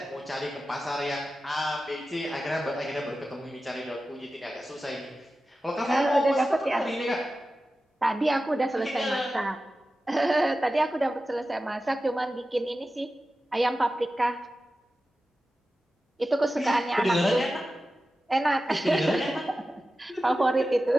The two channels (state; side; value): normal; both; correlation 0.94